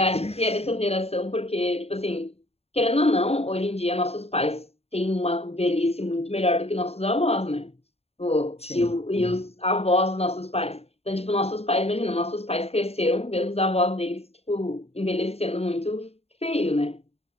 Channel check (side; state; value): right; late; 0.30 ms